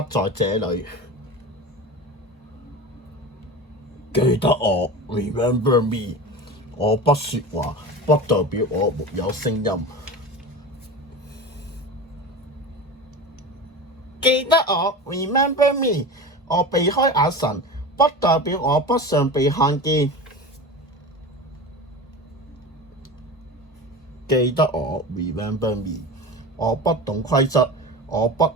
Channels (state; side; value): normal; both; correlation 0.29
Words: 在這裡。記得我 Remember Me。我不說話，不代表我沒有聲音。記得我 Remember Me。我避開眼神，不代表我不想被看見。記得我 Remember Me。我不懂規則，我不